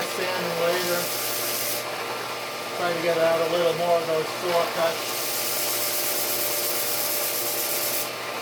sanding later. Try to get out a little more of those saw cuts.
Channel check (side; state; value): both; identical; correlation 1.00